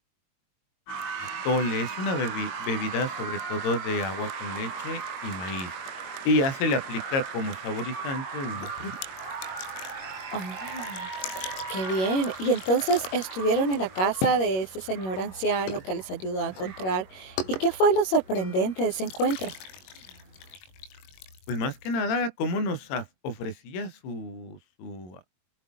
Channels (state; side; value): late; right; 22 ms